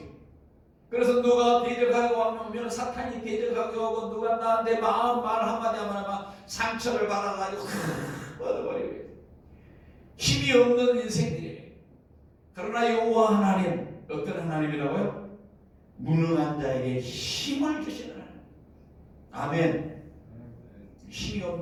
그래서 누가 대적하고 오면 사탄이 대적하고 오고 누가 나한테 말 한마디 하면 막 상처를 받아가지고 뻗어버리고 힘이 없는 인생들이에요. 그러나 여호와 하나님 어떤 하나님이라고요? 무능한 자에게 힘을 주시는 하나님. 아멘. 힘이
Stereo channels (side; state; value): both; identical; correlation 1.00